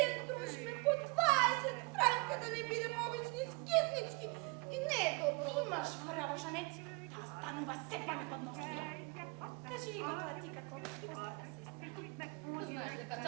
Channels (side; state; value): left; quieter; 28.8 dB